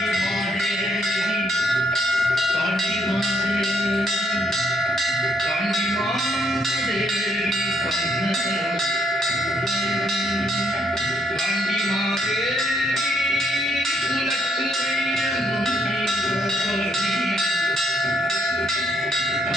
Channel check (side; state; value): both; normal; correlation 0.71